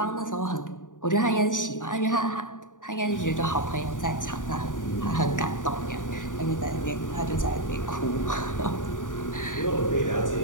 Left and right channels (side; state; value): right; late; 0.87 ms